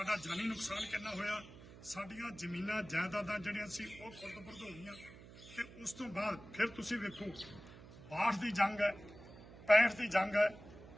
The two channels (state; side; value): noise; right; hum, 18 dB below the sound